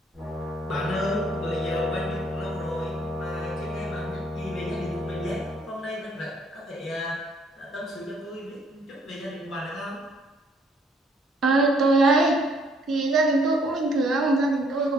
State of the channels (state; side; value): normal; both; correlation 0.65